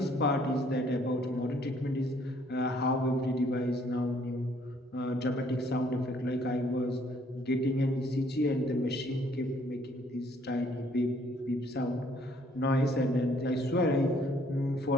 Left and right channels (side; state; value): both; normal; correlation 0.63